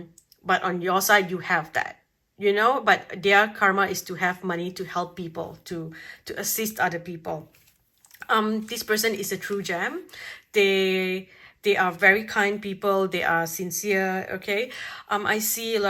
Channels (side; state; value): both; identical; correlation 1.00